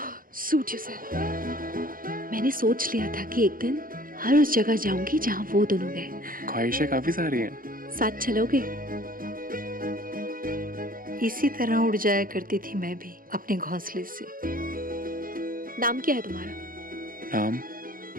सूट योरसेल्फ। मैंने सोच लिया था कि एक दिन हर उस जगह जाऊंगी जहाँ वो दोनों गए। ख्वाहिशें काफी सारी हैं। साथ चलोगे? इसी तरह उड़ जाया करती थी मैं भी अपने घोंसले से। नाम क्या है तुम्हारा? नाम?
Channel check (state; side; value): late; left; 0.41 ms